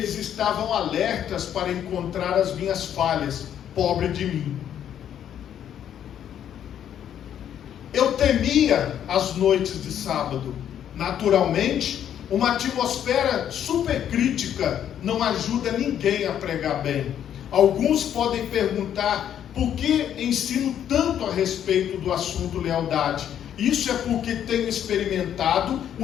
estavam alertas para encontrar as minhas falhas. Pobre de mim. Eu temia as noites de sábado. Naturalmente, uma atmosfera supercrítica não ajuda ninguém a pregar bem. Alguns podem perguntar: por que ensino tanto a respeito do assunto lealdade? Isso é porque tenho experimentado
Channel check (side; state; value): right; quieter; 9.9 dB